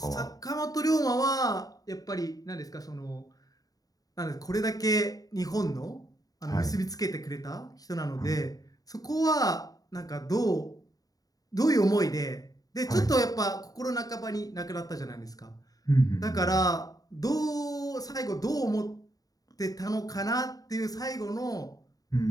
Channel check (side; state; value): right; late; 0.18 ms